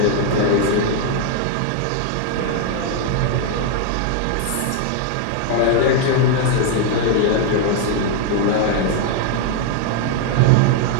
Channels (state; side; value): different; both; correlation 0.00